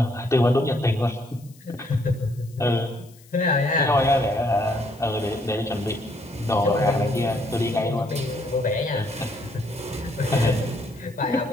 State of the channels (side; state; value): left; noise; hiss, 26 dB below the sound